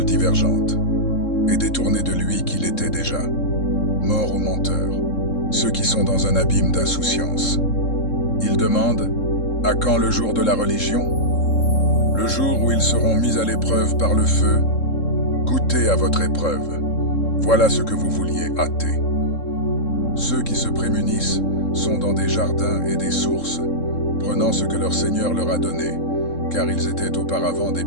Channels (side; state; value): right; late; 3.7 ms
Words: divergente et détourné de lui qu'il était déjà. Mort aux menteurs, ceux qui sont dans un abîme d'insouciance. Ils demandent « À quand le jour de la religion ?» Le jour où ils seront mis à l'épreuve par le feu. Goûtez à votre épreuve. Voilà ce que vous vouliez hâter. Ceux qui se prémunissent sont dans des jardins et des sources, prenant ce que leur Seigneur leur a donné, car ils étaient auparavant des